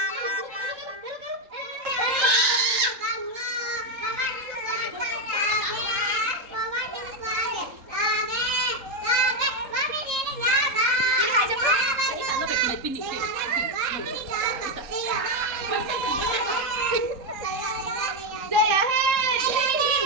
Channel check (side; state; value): left; late; 3.7 ms